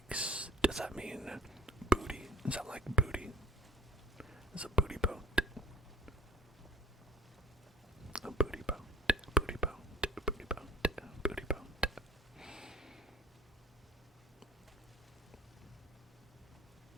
Does that mean booty? Is that like booty? It's a booty boat. A booty boat. Booty boat. Booty boat. Booty boat.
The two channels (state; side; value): normal; both; correlation 0.48